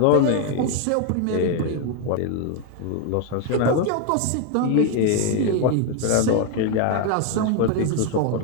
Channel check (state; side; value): different; both; correlation 0.00